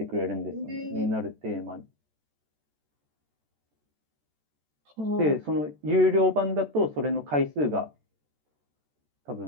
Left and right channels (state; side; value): late; left; 14 ms